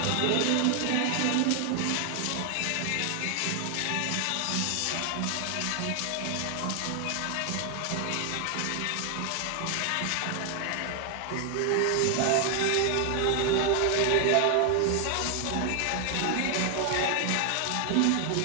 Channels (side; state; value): both; different; correlation 0.00